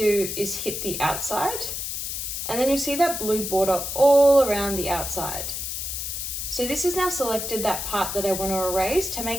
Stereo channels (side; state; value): left; noise; hiss, 4 dB below the sound